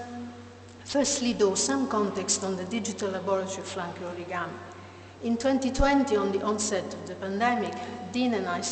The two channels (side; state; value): both; identical; correlation 1.00